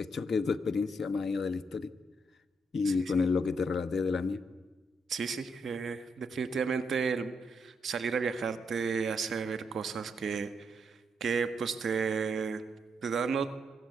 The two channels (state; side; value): normal; both; correlation 0.78